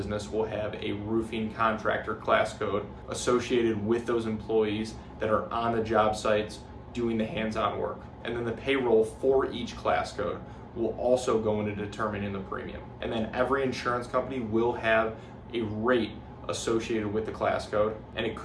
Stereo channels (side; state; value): both; identical; correlation 1.00